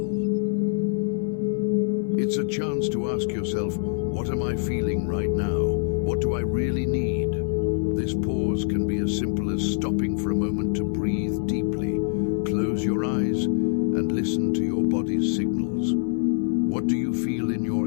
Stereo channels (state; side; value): silent; right; 58 dB below the other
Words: It's a chance to ask yourself, what am I feeling right now? What do I really need? This pause can be as simple as stopping for a moment to breathe deeply. Close your eyes and listen to your body's signals. What do you feel in your